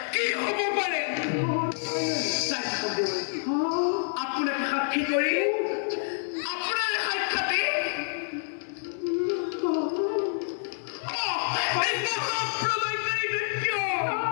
কি হ'ব পাৰে আপোনাক সাক্ষী কৰি আপোনাৰ সাক্ষাতে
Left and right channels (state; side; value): silent; right; 60 dB below the other